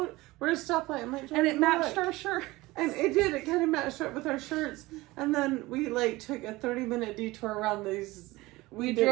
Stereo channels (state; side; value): quieter; left; 20.2 dB